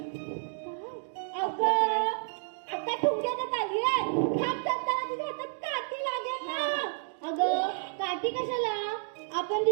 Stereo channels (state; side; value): silent; left; digital silence